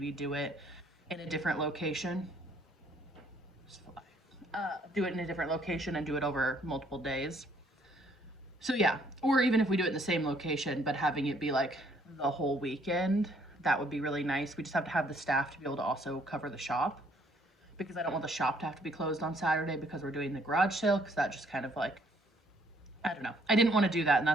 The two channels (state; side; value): normal; both; correlation 0.65